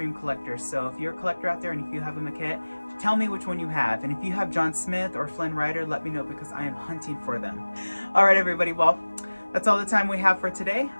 collectors. So if you're a collector out there and if you have a maquette, tell me which one you have, and if you have John Smith or Flynn Rider, let me know, because I am hunting for them. All right, everybody, well, that's all the time we have for today.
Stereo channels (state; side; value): inverted; both; correlation -1.00